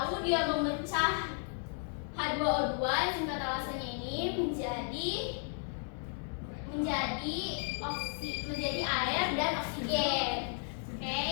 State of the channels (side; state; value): right; silent; 55 dB below the other